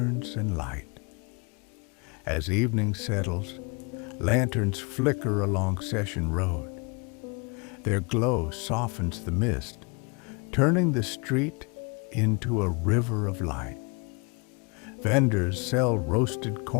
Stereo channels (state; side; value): quieter; right; 31.3 dB